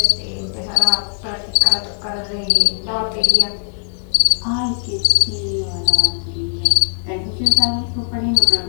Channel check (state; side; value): silent; right; 67 dB below the other